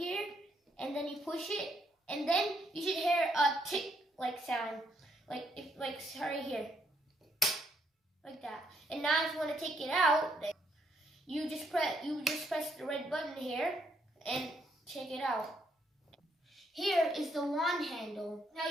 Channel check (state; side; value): normal; both; correlation 0.73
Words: and then you push it, and then you should hear a tick-like sound, like right here, like that. And now if you want to take it out, you just press the red button here and take it out. Here is the wand handle.